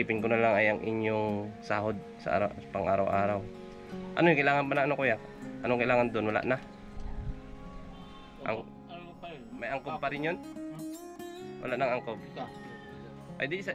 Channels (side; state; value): both; identical; correlation 1.00